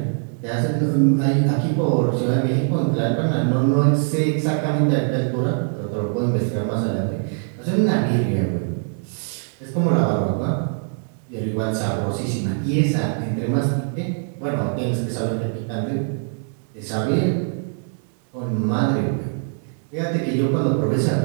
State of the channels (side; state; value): left; silent; 57 dB below the other